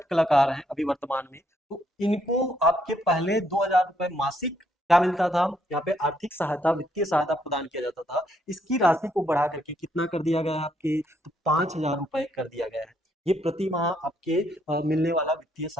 कलाकार हैं अभी वर्तमान में। तो इनको आपके पहले 2000 रुपए मासिक क्या मिलता था, यहाँ पे आर्थिक सहायता वित्तीय सहायता प्रदान किया जाता था। इसकी राशि को बढ़ा करके कितना कर दिया गया है आपके, तो 5000 रुपए कर दिया गया है। ये प्रति माह आपके मिलने वाला वित्तीय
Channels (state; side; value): normal; both; correlation 0.72